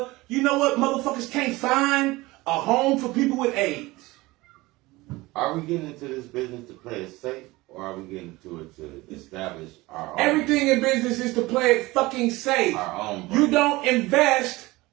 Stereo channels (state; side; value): quieter; left; 20.6 dB